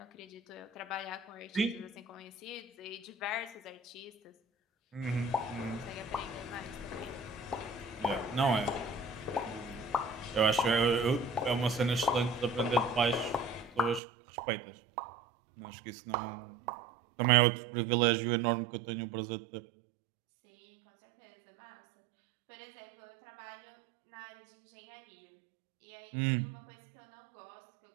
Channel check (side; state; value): left; drops out; at 14.0 s